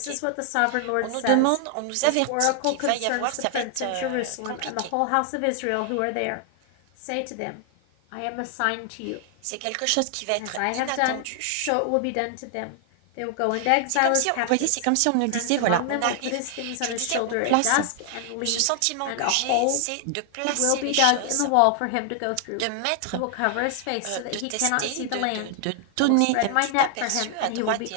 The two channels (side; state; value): both; different; correlation 0.00